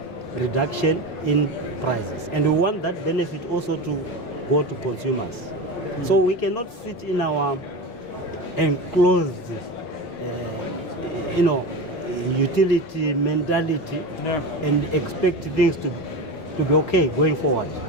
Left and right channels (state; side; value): late; right; 5.6 ms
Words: reduction in prices. And we want that benefit also to go to consumers. So we cannot sit in our enclosed, utility mentality and expect things to be okay going forward.